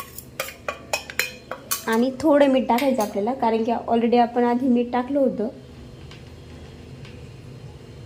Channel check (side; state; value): both; identical; correlation 1.00